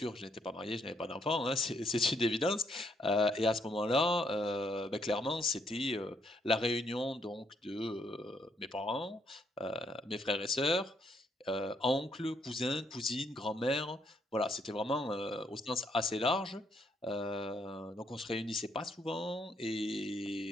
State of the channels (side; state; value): both; normal; correlation 0.73